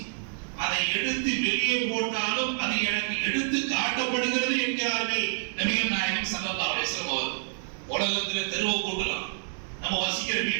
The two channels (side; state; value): left; silent; 59 dB below the other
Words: அதை எடுத்து வெளியே போட்டாலும் அது எனக்கு எடுத்து காட்டப்படுகிறது என்கிறார்கள் நபிகள் நாயகம் ஸல்லல்லாஹு அலைஹி வஸல்லம் அவர்கள். உலகத்துல தெருவை கூட்டலாம், நம்ம வசிக்கிற